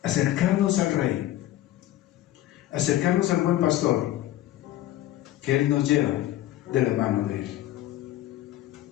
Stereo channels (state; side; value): quieter; right; 14.0 dB